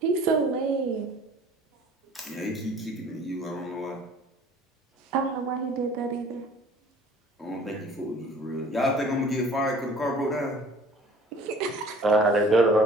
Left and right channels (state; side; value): normal; both; correlation 0.49